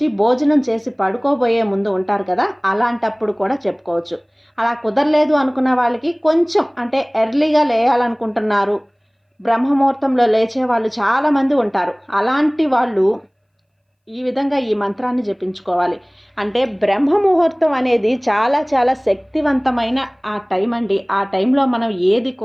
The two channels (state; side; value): identical; both; correlation 1.00